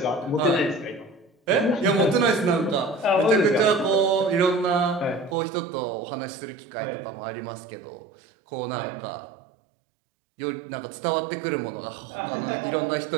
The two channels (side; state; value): left; drops out; at 5.4 s